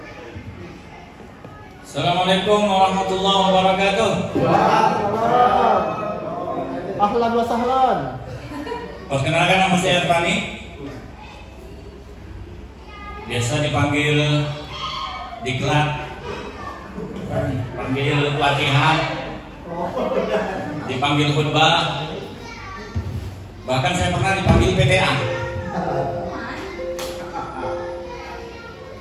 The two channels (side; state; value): both; identical; correlation 1.00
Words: Assalamualaikum warahmatullahi wabarakatuh. Ahlan wa sahlan. Perkenalkan, nama saya Erwani. Biasa dipanggil diklat, panggil pelatihan, dipanggil khutbah, bahkan saya pernah dipanggil PTA.